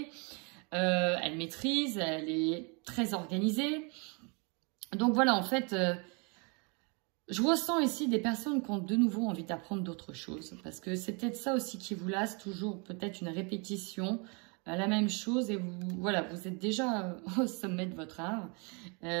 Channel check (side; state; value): left; quieter; 33.0 dB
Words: Elle maîtrise. Elle est très organisée. Donc voilà, en fait, je ressens ici des personnes qui ont de nouveau envie d'apprendre d'autres choses. Parce que c'est peut-être ça aussi qui vous lasse, toujours peut-être une répétition, la même chose. Et voilà, vous êtes déjà au sommet de votre art.